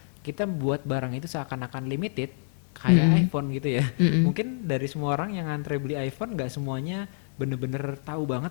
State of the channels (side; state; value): right; silent; 60 dB below the other